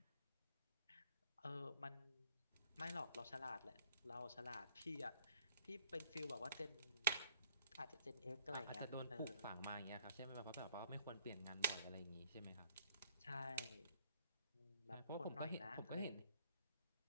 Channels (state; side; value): inverted; both; correlation -0.61